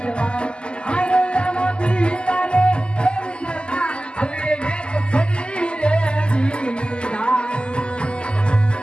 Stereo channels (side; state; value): right; late; 0.050 ms